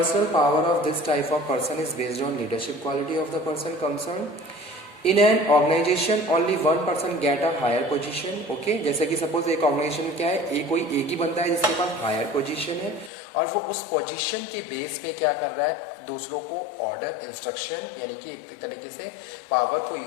power of this type of person is based on leadership quality of the person concern. In an organisation only one person get a higher position. Okay, जैसे कि सपोज एक organisation में क्या है, कोई एक ही बंदा है जिसके पास हायर पोजीशन है और वो उस पोजीशन के बेस पे क्या कर रहा है, दूसरों को ऑर्डर इंस्ट्रक्शन यानी कि एक तरीके से पावर को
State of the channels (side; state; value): right; drops out; at 13.1 s